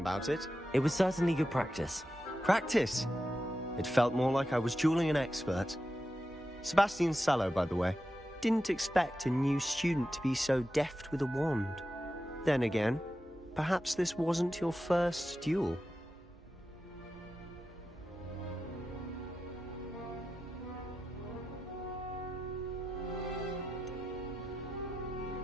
it. It was certainly good practice. Practice? It felt more like I was dueling an expert. Sebastian Sallow, by the way. Didn't expect a new student to be so deft with a wand. Then again, perhaps this wasn't your first duel.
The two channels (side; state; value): both; normal; correlation 0.90